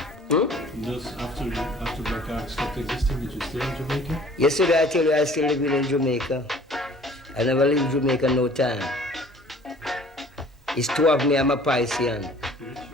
In those after Black Ark stopped existing, did you stay in Jamaica? Yesterday I tell you I still living in Jamaica. I never leave Jamaica no time. It's two of me, I'm a Piscean.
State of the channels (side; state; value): both; normal; correlation 0.51